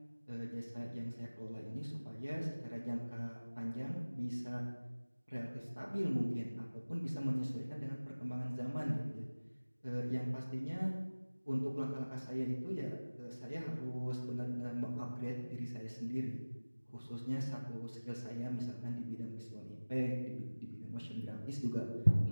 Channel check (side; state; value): both; inverted; correlation -1.00